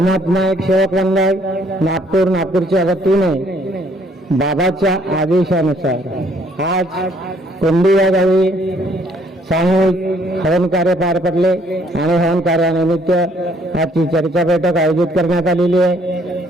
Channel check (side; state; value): both; normal; correlation 0.65